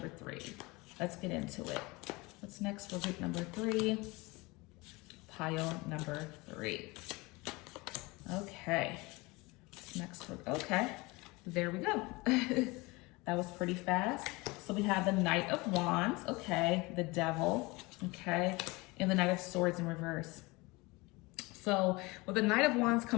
3. Let's get into it. What's next for group number 3? Pile number 3. Okay. What's next for, okay. There we go. That was pretty fast. So we have the Knight of Wands, okay, the Devil, okay, and the Knight of Swords in reverse. So with the Knight of Wands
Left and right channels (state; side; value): quieter; right; 24.0 dB